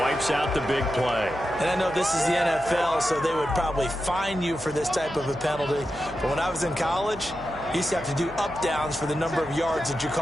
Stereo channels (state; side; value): noise; right; hum, 17 dB below the sound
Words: out the big play. And I know this is the NFL, so they would probably fine you for this type of a penalty. But when I was in college, You used to have to do up-downs for the number of yards that you